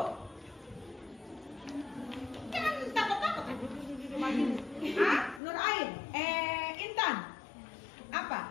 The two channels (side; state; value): right; drops out; at 5.4 s